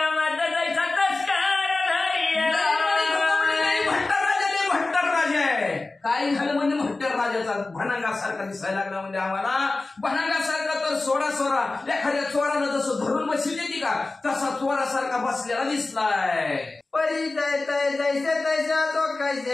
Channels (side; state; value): right; quieter; 3.3 dB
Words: भनांगासारखा दिसायला लागला म्हणजे आम्हाला भनांगासारखा तर सोडा एखाद्या चोरानं जसं धरून बसली देते का तसा चोरासारखा बसलेला दिसलाय. परिचय तय जैसे तैसा तो